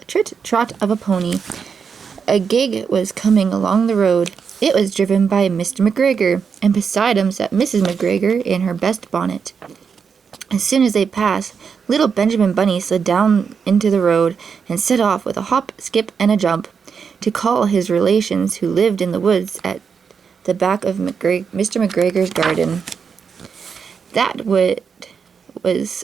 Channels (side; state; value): left; quieter; 6.2 dB